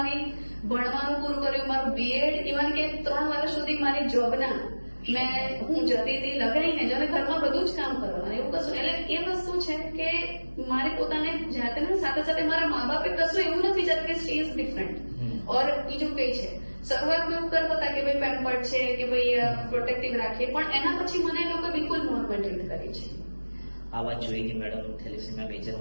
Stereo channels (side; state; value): both; inverted; correlation -1.00